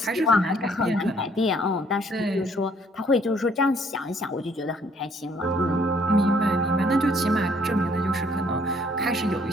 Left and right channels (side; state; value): both; normal; correlation 0.63